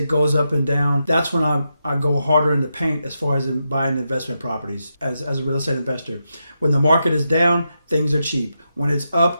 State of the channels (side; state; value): both; inverted; correlation -0.86